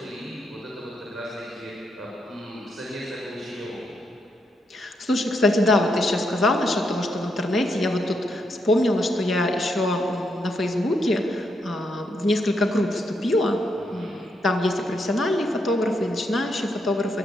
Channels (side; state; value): both; normal; correlation 0.79